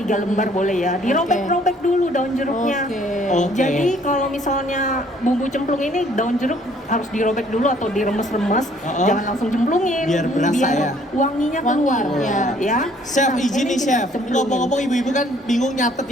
lembar boleh ya. Dirobek-robek dulu daun jeruknya. Oke. Jadi kalau misalnya bumbu cemplung ini daun jeruk harus dirobek dulu atau diremes-remes, jangan langsung cemplungin. Biar berasa ya. Wanginya Wangi, keluar. ya. Chef, Nah, izin ini nih kita Chef. cemplungin. Ngomong-ngomong ibu-ibu kan bingung nyatet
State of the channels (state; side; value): normal; both; correlation 0.61